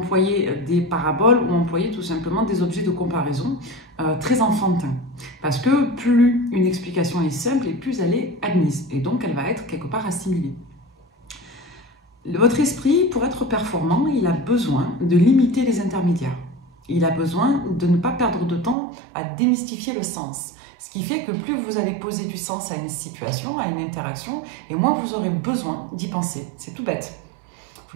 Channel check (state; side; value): drops out; left; at 18.8 s